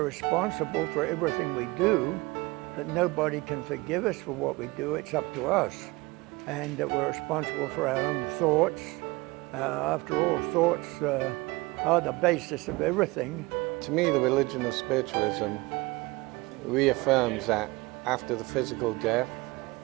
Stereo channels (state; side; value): quieter; left; 23.0 dB